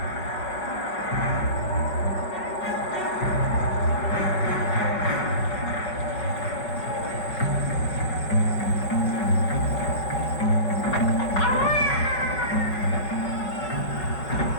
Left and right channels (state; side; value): late; right; 5.4 ms